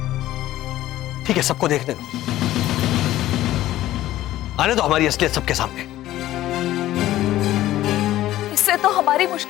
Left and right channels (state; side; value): quieter; right; 14.5 dB